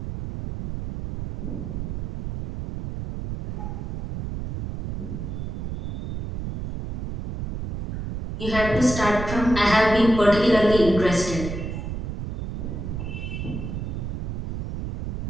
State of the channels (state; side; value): noise; right; rumble, 5 dB below the sound